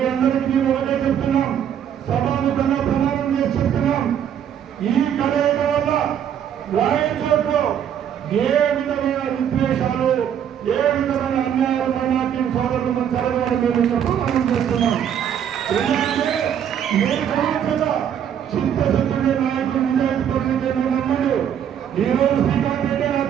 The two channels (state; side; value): quieter; left; 9.1 dB